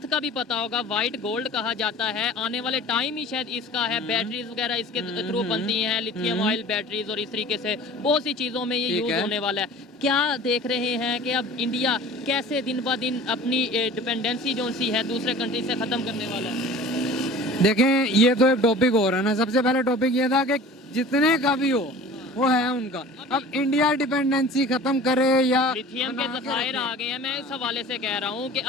का भी पता होगा, व्हाइट गोल्ड कहा जाता है, आने वाले टाइम ही शायद इसका है, बैटरीज वगैरह इसके थ्रू बनती हैं, लिथियम ऑयल बैटरीज, और इस तरीके से बहुत सी चीज़ों में ये यूज होने वाला है। क्या देख रहे हैं कि अब इंडिया कैसे दिन ब दिन अपनी डिपेंडेंसी जो सी है दूसरे कंट्री से ख़त्म करने वाला है? देखें, ये तो एक टॉपिक हो रहा है ना। सबसे पहले टॉपिक ये था कि जितने का भी हो वो है उनका। अब इंडिया डिपेंडेंसी खत्म करे या लिथियम के ज़खायर आ गए हैं, मैं इस हवाले से कह रहा हूँ कि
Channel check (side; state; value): both; normal; correlation 0.42